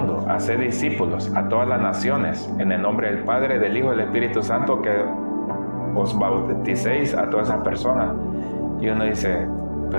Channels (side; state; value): both; inverted; correlation -1.00